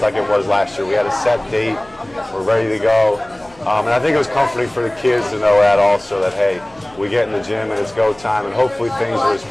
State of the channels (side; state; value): left; noise; hum, 28 dB below the sound